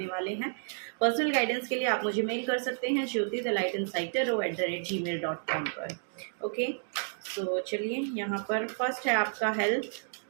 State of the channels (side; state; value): left; silent; digital silence